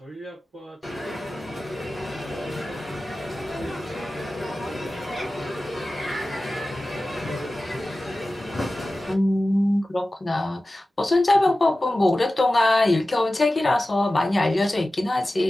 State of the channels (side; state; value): both; normal; correlation 0.95